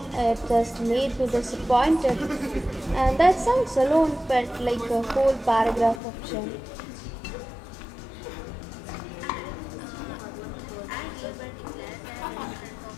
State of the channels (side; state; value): right; drops out; at 6.0 s